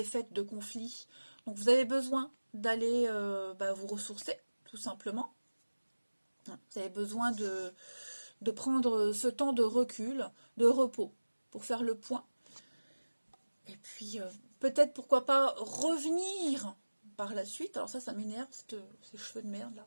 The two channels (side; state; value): both; inverted; correlation -1.00